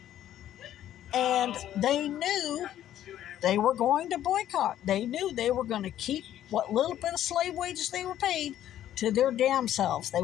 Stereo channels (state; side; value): quieter; right; 11.8 dB